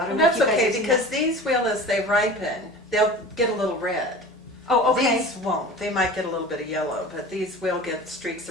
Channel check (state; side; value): normal; both; correlation 0.38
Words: don't know if That's you guys okay, have seen because that. these will, as they ripen, they'll get a little red. Oh, okay. These won't. They might get a little bit of yellow, but these will get streaks